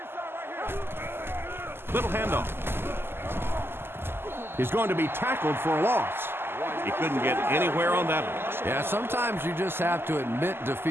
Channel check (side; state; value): left; late; 0.11 ms